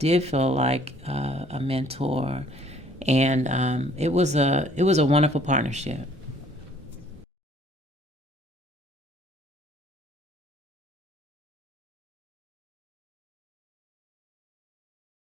feel like a mentor, and it was a wonderful partnership.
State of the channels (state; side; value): normal; both; correlation 0.58